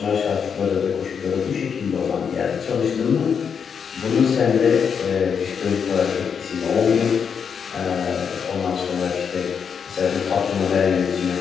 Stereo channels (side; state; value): right; quieter; 6.8 dB